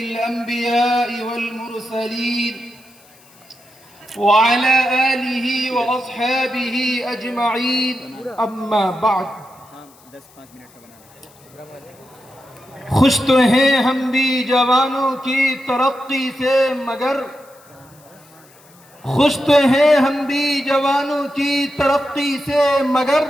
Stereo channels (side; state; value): left; noise; hiss, 27 dB below the sound